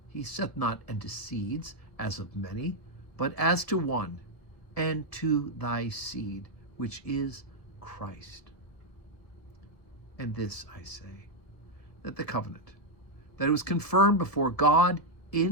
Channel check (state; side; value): late; right; 1.7 ms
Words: He saith not unto seeds, as of many, but as to one, and to thy seed, which is Christ. And this I say, that the covenant, that it was confirmed before God